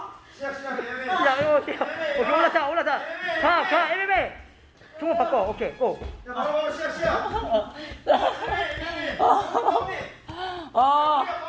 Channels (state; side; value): identical; both; correlation 1.00